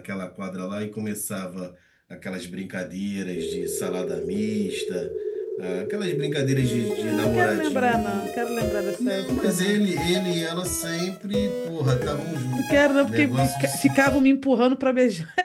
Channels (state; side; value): identical; both; correlation 1.00